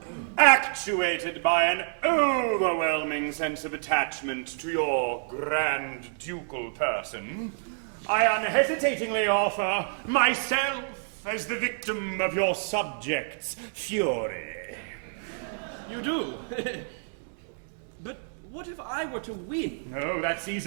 Actuated by an overwhelming sense of attachment to your grand ducal person, I unhesitatingly offer myself as the victim of your subjects' fury. You do? But what if I were to win? Oh, that's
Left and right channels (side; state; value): left; silent; digital silence